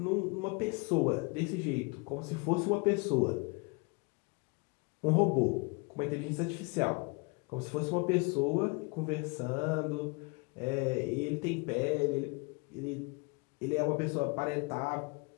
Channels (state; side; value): quieter; right; 29.6 dB